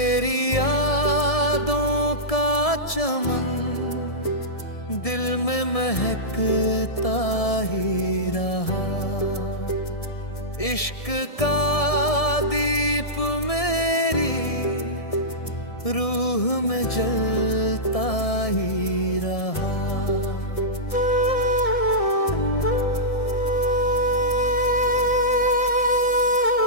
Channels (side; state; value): right; late; 1.7 ms